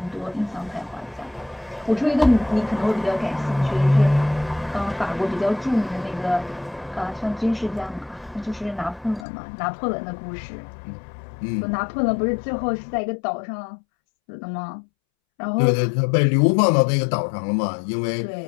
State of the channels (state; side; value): drops out; right; at 9.2 s